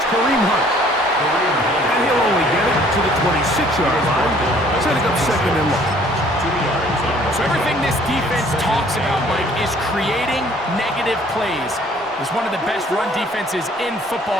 Kareem Hunt. And he'll only get it to the 26-yard line, setting up 2nd and long. So everything this defense talks about, Mike, is creating negative plays. It's one of the best run defenses in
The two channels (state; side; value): normal; both; correlation 0.57